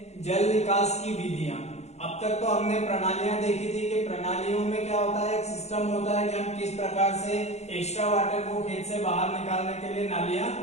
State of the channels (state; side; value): late; right; 0.32 ms